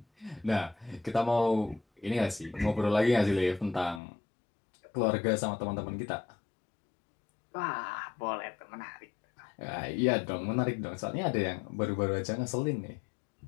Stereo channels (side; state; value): right; drops out; at 4.0 s